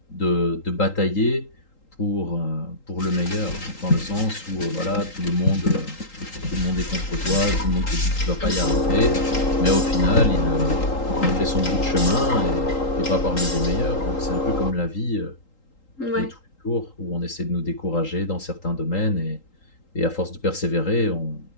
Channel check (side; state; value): right; late; 3.8 ms